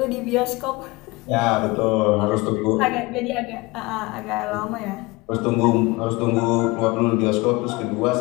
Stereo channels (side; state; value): right; quieter; 23.0 dB